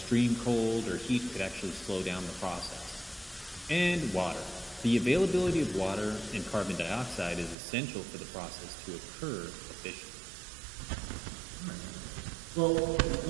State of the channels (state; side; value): drops out; left; at 7.6 s